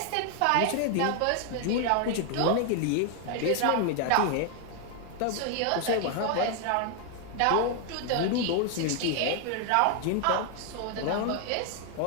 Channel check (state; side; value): different; both; correlation 0.00